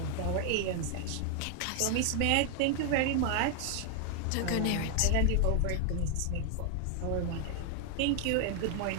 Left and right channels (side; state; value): both; different; correlation 0.00